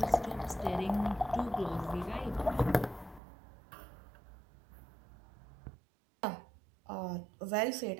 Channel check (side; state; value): left; drops out; at 3.2 s